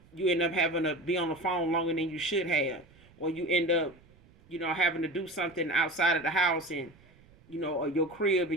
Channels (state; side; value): noise; right; rumble, 27 dB below the sound